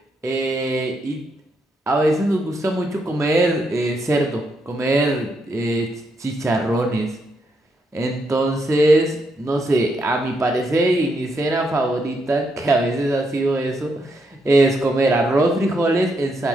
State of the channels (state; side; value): normal; both; correlation 0.79